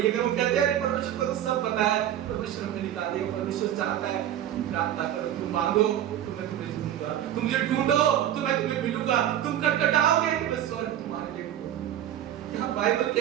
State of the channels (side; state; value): left; quieter; 11.4 dB